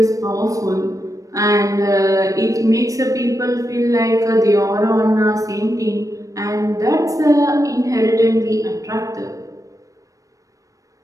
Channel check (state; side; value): late; left; 0.16 ms